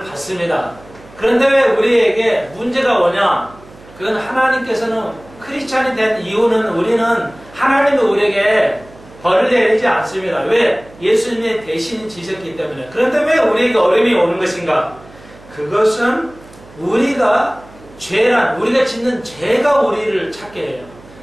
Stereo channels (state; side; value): noise; right; hum, 22 dB below the sound